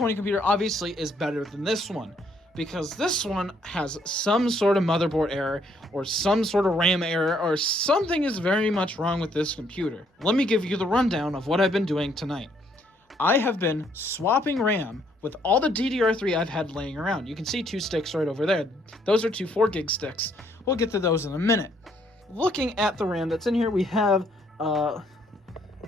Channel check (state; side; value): normal; both; correlation 0.68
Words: computer obviously is better than this one, because this one has some sort of motherboard error or some sort of RAM error or something is very much wrong with this computer. Let me give you the rundown of what I've been doing tonight. I have been swapping RAM with all the DDR3 I've had laying around. You can see 2 sticks right over there. Those are 2 4-gig sticks. We'll get to those in a minute. Looking at the RAM that's in here, we have,